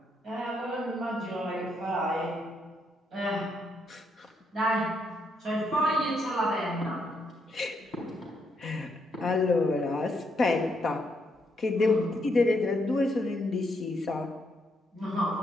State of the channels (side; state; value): both; normal; correlation 0.76